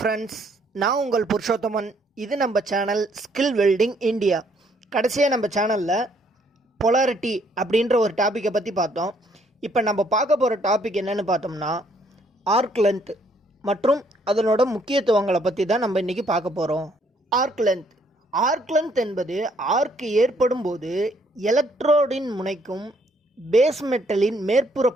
நான் உங்கள் புருஷோத்தமன். இது நம்ம சேனல் ஸ்கில் வெல்டிங் இந்தியா. கடைசியாக நம்ம சேனலில் பொலாரிட்டி அப்படின்ற ஒரு டாப்பிக்கை பற்றி பார்த்தோம். இப்போ நம்ம பார்க்க போகிற டாபிக் என்னென்னு பார்த்தோம்னா ஆர்க் லென்த் மற்றும் அதனோட முக்கியத்துவங்களை பற்றி தான் நம்ம இன்றைக்கி பார்க்க போகிறோம். ஆர்க் லென்த் என்பது ஆர்க் ஏற்படும் போது எலக்ட்ரோடின் முனைக்கும் பேஸ் மெட்டலின் மேற்புற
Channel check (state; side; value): normal; both; correlation 0.67